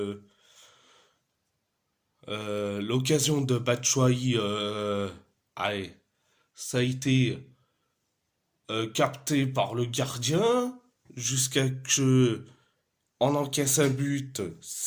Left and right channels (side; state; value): both; identical; correlation 1.00